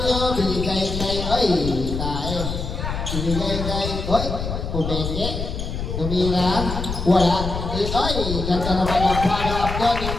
binigay kay, oy, tayo. Binigay kay, oy, pumenge. Tumira, wala. Oy, ganda naman ang follow-up doon ni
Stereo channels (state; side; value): noise; left; rumble, 4 dB below the sound